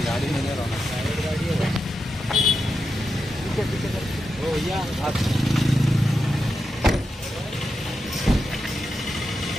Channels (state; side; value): normal; both; correlation 0.88